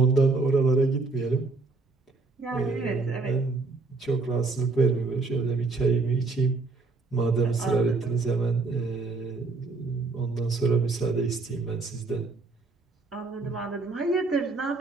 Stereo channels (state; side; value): quieter; left; 3.7 dB